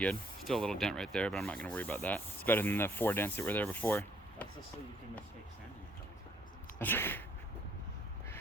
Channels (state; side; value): normal; both; correlation 0.66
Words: Still a little dent right there, but I'm not going to worry about that. It's better than the 4 dents that were there before. That's just so you can mistake sanding a